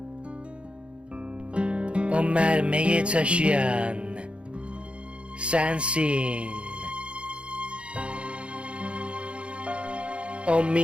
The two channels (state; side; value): late; left; 0.059 ms